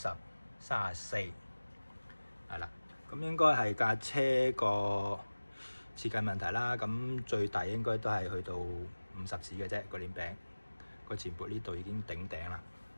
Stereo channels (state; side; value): inverted; both; correlation -1.00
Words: 5034，係啦。咁應該係架車個設計問題啦。咁最大應該都係去到50齒嘅啫，個鏈餅個前撥呢度已經頂頂啦，